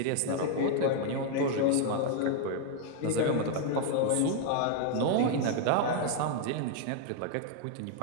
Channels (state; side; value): different; both; correlation 0.00